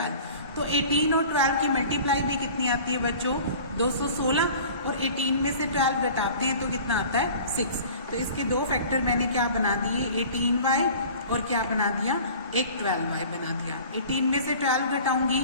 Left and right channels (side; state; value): both; inverted; correlation -0.43